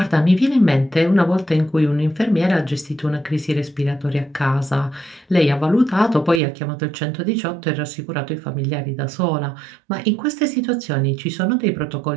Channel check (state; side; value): drops out; left; at 6.4 s